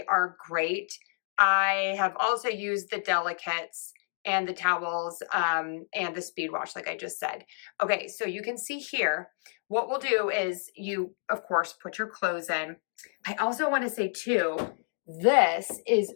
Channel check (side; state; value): right; silent; digital silence